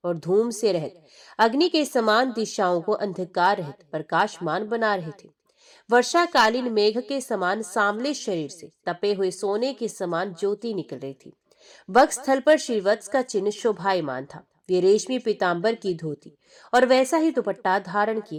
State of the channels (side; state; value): both; identical; correlation 1.00